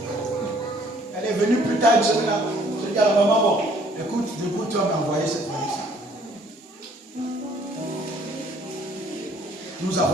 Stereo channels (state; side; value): normal; both; correlation 0.60